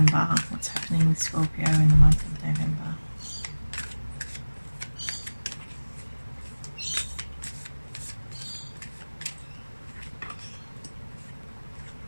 What's happening with Scorpio in the month of November?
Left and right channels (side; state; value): both; inverted; correlation -1.00